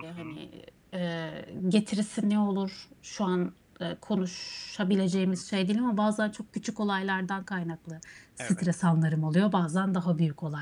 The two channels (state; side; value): identical; both; correlation 1.00